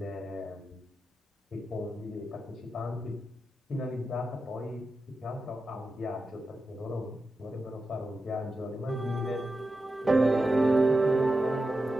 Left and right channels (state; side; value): normal; both; correlation 0.90